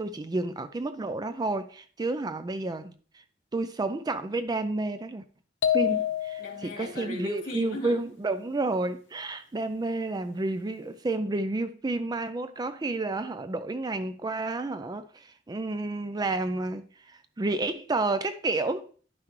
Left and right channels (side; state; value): both; normal; correlation 0.43